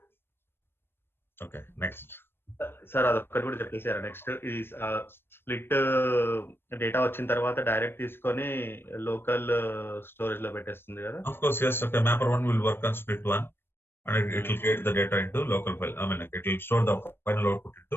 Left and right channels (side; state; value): right; late; 0.11 ms